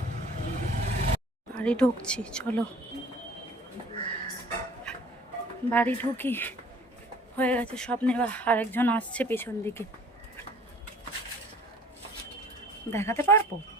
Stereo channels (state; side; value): normal; both; correlation 0.50